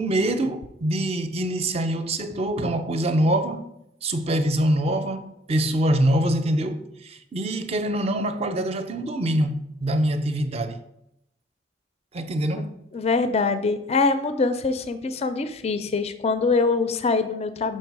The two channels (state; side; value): normal; both; correlation 0.51